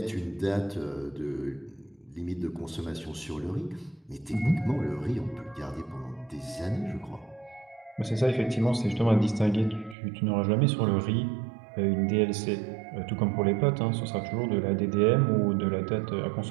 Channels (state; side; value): drops out; left; at 10.0 s